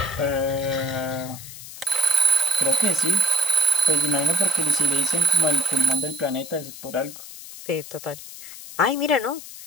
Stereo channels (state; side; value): noise; left; hiss, 14 dB below the sound